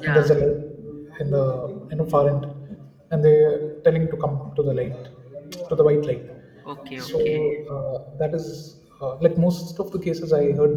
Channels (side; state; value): both; identical; correlation 1.00